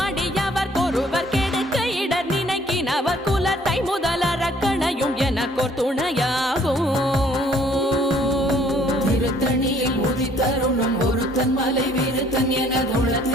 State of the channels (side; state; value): both; normal; correlation 0.60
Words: அடியவர் கொருவர் கெடுக்க இடர் நினைக்கினவர் குலத்தை முதலறக்கணையும் எனக்கோர் துணையாகும். திருத்தணியில் உதித்தருளும் ஒருத்தன் மலை விருத்தன் என